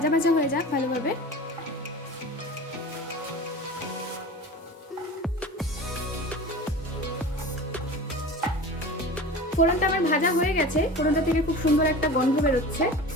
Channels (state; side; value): normal; both; correlation 0.35